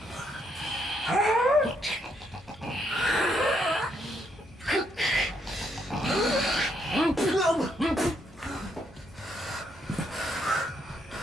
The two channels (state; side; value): normal; both; correlation 0.74